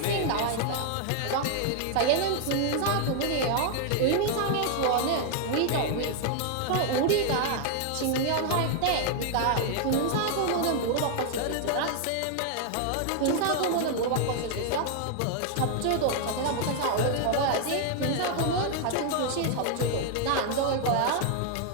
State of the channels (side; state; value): both; different; correlation 0.00